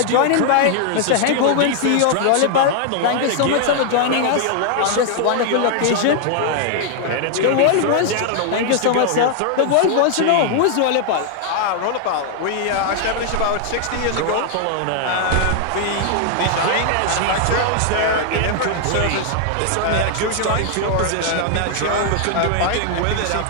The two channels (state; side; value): different; both; correlation 0.00